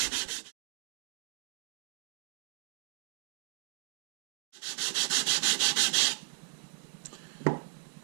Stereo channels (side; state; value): left; silent; digital silence